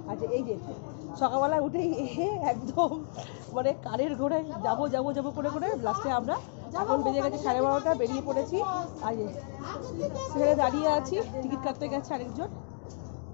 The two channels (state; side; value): silent; right; 57 dB below the other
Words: আচ্ছা এই যে সকালবেলা উঠেই একদম মানে কারের ঘোড়ায় যাবো যাবো যাবো করে করে লাস্টে আমরা এখন বেজে গেছে 12:30, বেরিয়ে পড়েছি। আর সেখানে দাঁড়িয়ে আছি, টিকিট কাটতে গেছে আরেকজন।